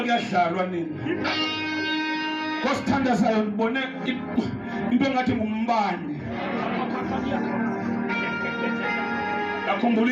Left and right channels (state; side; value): identical; both; correlation 1.00